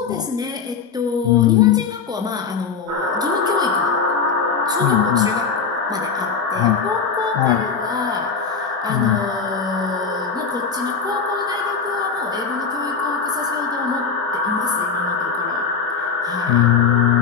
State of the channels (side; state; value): right; quieter; 5.8 dB